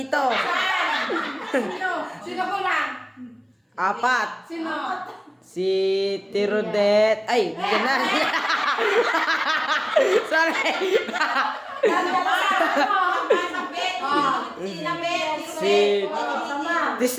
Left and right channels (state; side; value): identical; both; correlation 1.00